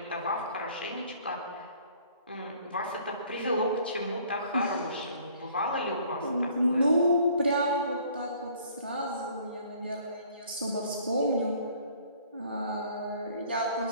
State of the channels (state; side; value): inverted; both; correlation -0.57